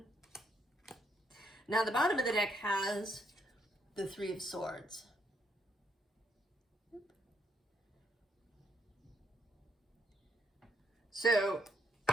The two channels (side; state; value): both; normal; correlation 0.74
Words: Now the bottom of the deck has the 3 of Swords. So